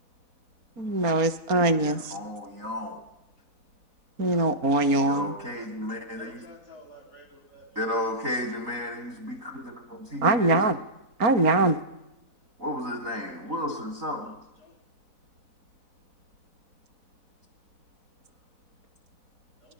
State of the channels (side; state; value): left; late; 4.3 ms